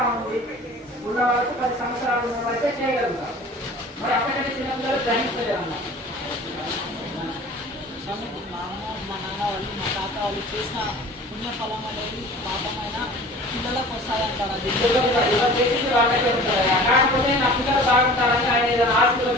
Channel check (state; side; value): normal; both; correlation 0.43